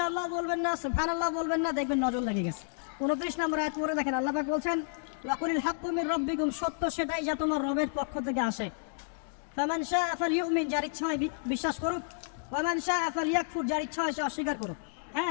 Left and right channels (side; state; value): right; silent; digital silence